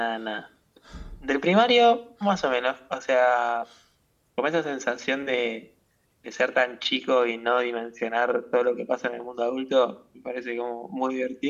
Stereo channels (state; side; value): identical; both; correlation 1.00